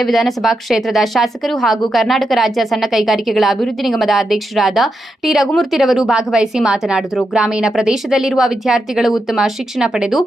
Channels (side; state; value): both; normal; correlation 0.86